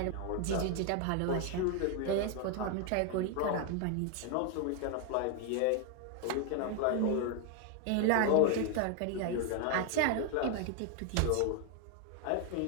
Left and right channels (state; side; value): different; both; correlation 0.01